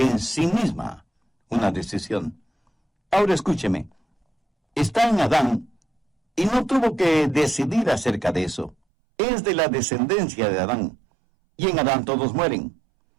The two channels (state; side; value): drops out; left; at 8.8 s